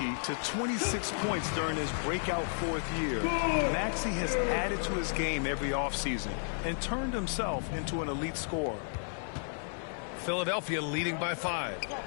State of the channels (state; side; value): silent; right; 56 dB below the other